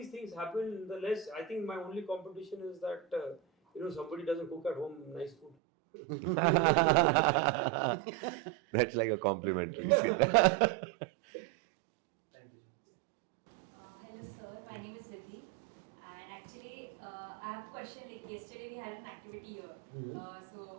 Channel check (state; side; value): drops out; left; at 5.5 s